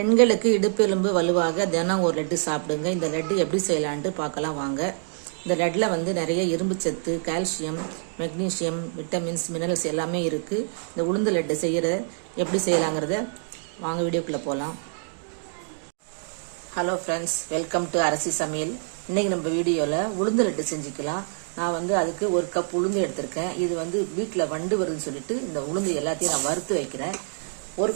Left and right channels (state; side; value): silent; left; 61 dB below the other